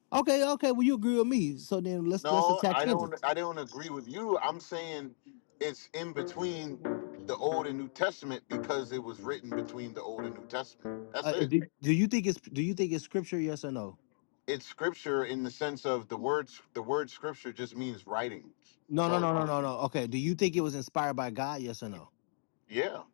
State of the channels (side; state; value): right; silent; digital silence